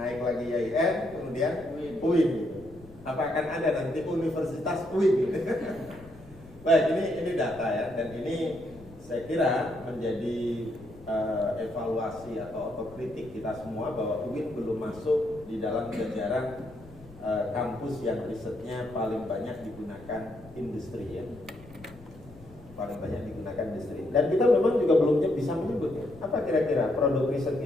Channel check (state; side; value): noise; left; rumble, 21 dB below the sound